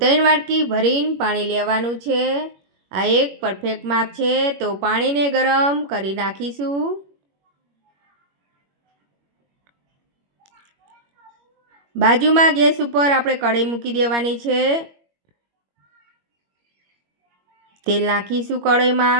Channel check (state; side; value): late; left; 21 ms